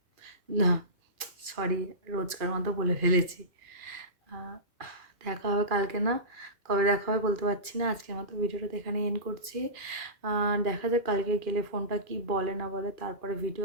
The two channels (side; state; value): left; late; 2.4 ms